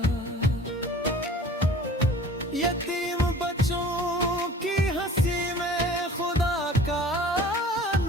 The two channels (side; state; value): both; normal; correlation 0.46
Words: यतीम बच्चों की हंसी में खुदा का